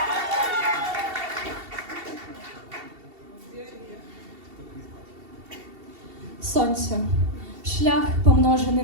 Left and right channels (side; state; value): left; late; 2.7 ms